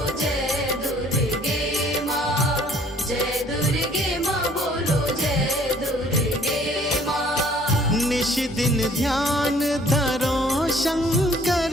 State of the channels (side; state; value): both; normal; correlation 0.58